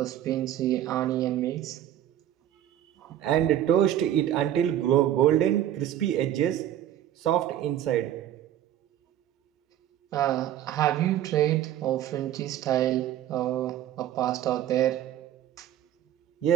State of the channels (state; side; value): quieter; left; 11.8 dB